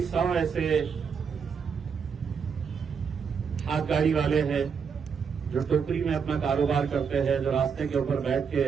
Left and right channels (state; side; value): quieter; left; 6.4 dB